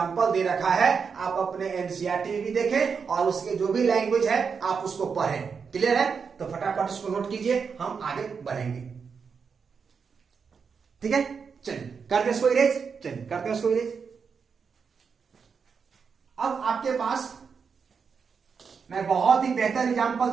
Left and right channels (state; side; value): quieter; left; 5.9 dB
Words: दे रखा है, आप अपने एनसीईआरटी में भी देखें और उसके जो भी लैंग्वेज है आप उसको पढ़ें। क्लियर है। तो फटाफट इसको नोट कीजिए, हम आगे बढ़ेंगे। ठीक है, चलिए करते इसको इरेज, चलिए करते हैं इसको इरेज। अब आपके पास मैं बहुत ही बेहतर एग्जांपल